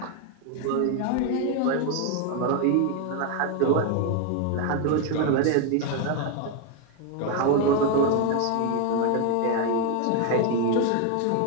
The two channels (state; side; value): different; both; correlation 0.01